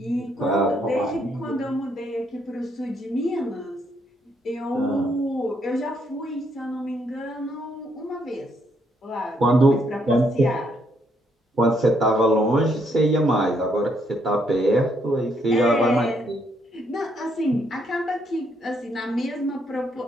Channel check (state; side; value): normal; both; correlation 0.73